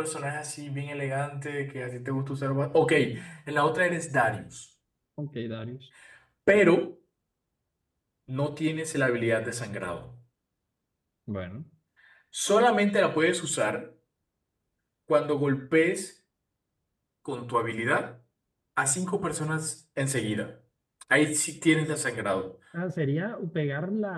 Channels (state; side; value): identical; both; correlation 1.00